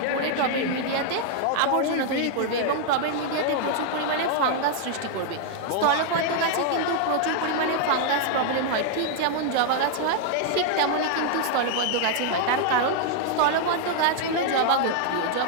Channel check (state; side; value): different; both; correlation 0.00